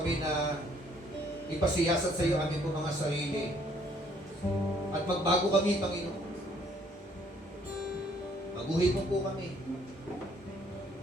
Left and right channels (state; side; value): normal; both; correlation 0.63